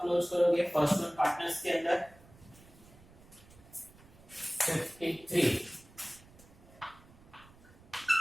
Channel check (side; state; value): right; noise; rumble, 24 dB below the sound